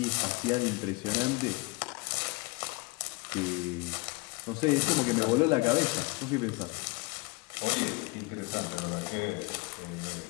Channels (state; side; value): quieter; right; 26.8 dB